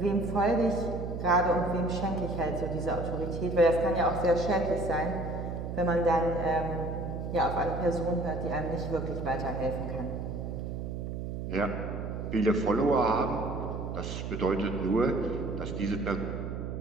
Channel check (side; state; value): right; noise; hum, 5 dB below the sound